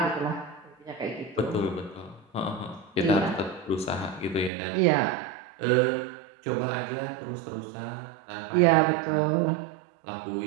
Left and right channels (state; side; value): drops out; left; at 4.5 s